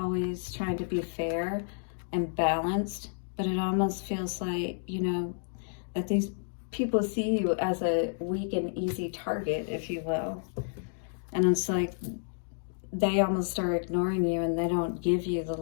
trying to be fair and balanced, but it almost feels like, you know, that these people see you as a weak and easy target, if you will. And it's like they almost are ignoring you, and they don't give you the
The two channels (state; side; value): silent; right; digital silence